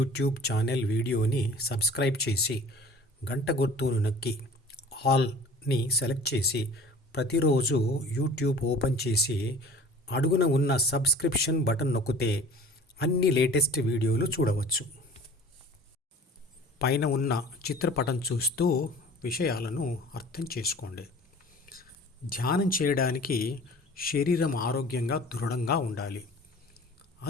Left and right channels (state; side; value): normal; both; correlation 0.44